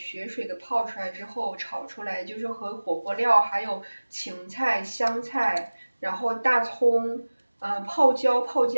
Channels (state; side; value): inverted; both; correlation -1.00